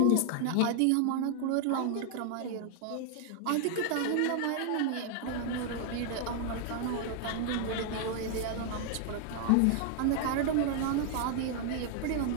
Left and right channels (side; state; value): both; different; correlation 0.00